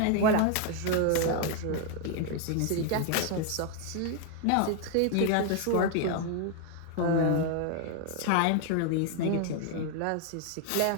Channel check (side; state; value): both; different; correlation 0.00